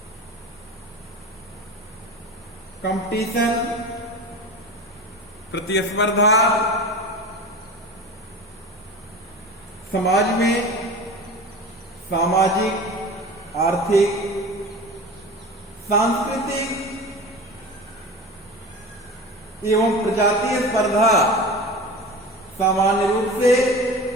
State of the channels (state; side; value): normal; both; correlation 0.33